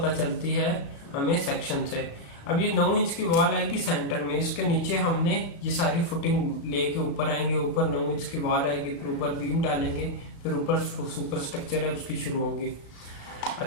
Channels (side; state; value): right; late; 36 ms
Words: चलती है हमें सेक्शन से। अब ये 9 इंच की वॉल आएगी सेंटर में, इसके नीचे हमने ये सारी फुटिंग लेके ऊपर आएंगे, ऊपर 9 इंच की वॉल आएगी, फिर ऊपर बीम डालेंगे, फिर ऊपर सुपर स्ट्रक्चर है उसकी शुरू होगी।